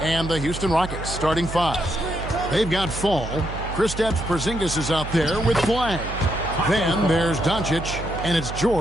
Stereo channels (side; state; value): right; noise; hum, 8 dB below the sound